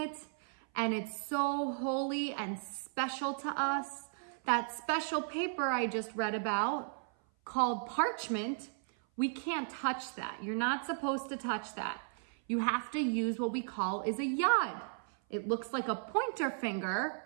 and it's so holy and special to us, that special paper I just read about, called parchment, We can't touch that. You're not supposed to touch that. You have to use what we call is a yad. It looks like a pointer finger,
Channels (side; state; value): left; silent; 54 dB below the other